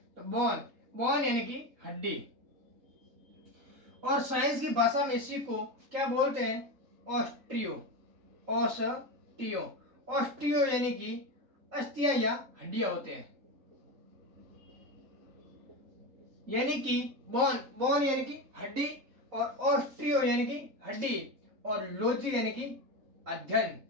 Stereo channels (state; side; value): late; left; 3.3 ms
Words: तो बोन यानी कि हड्डी। और साइंस की भाषा में इसी को क्या बोलते हैं? ऑस्टियो यानी कि अस्थियां या हड्डियां होते हैं। यानी कि बोन यानी कि हड्डी, और ऑस्टियो यानी कि हड्डी, और लॉजी यानी कि अध्ययन।